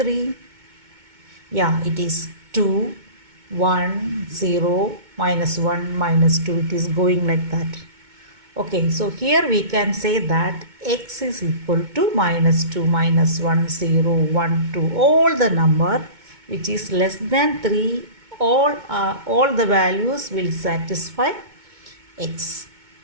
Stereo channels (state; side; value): late; left; 2.2 ms